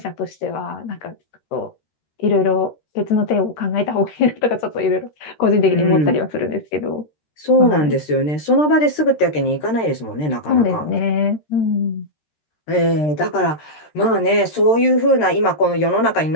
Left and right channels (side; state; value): right; late; 13 ms